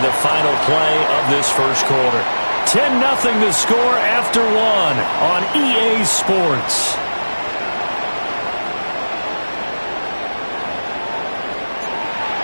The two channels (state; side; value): inverted; both; correlation -1.00